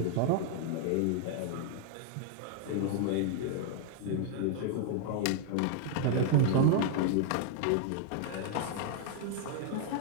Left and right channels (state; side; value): different; both; correlation 0.00